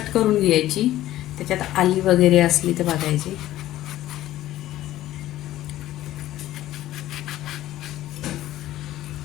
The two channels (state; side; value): quieter; right; 14.4 dB